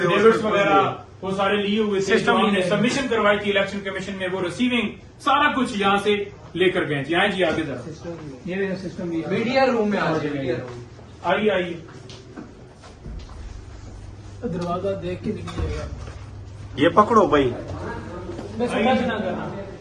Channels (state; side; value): identical; both; correlation 1.00